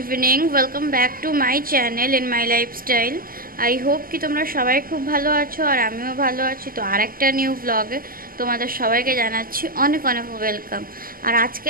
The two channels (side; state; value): left; late; 0.42 ms